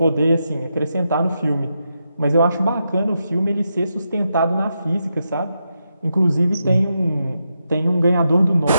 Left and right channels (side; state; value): both; inverted; correlation -0.85